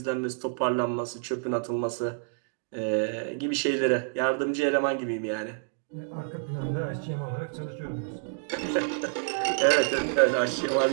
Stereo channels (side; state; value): left; silent; digital silence